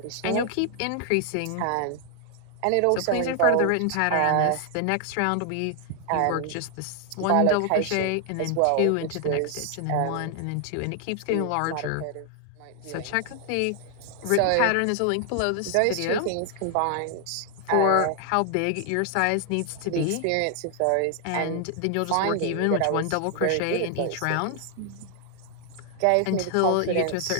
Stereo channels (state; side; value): different; both; correlation 0.00